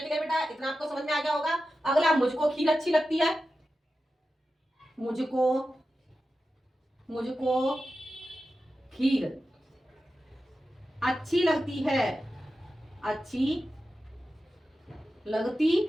ठीक है बेटा? इतना आपको समझ में आ गया होगा। अगला, मुझको खीर अच्छी लगती है। मुझको, मुझको खीर अच्छी लगती है, अच्छी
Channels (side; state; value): both; normal; correlation 0.92